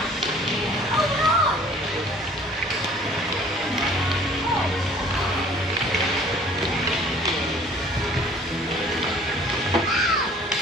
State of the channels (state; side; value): normal; both; correlation 0.53